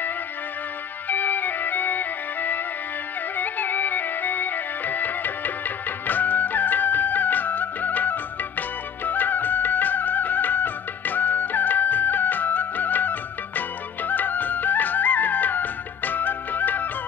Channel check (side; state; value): right; quieter; 7.5 dB